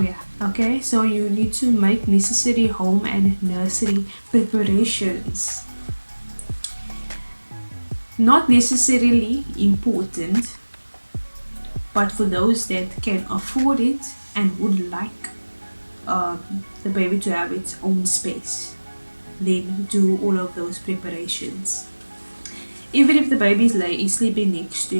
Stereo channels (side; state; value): both; inverted; correlation -1.00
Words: yeah, okay. So you need to make necessary home and nursery preparations. Not necessarily important, but for those that can afford it and would like the baby to have its own space, then do all of those preparations. Even if the baby is sleeping next to